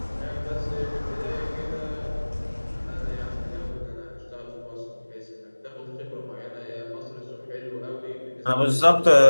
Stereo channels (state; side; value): inverted; both; correlation -1.00